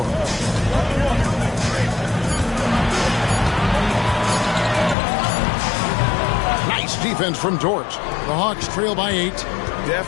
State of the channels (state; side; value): drops out; right; at 5.0 s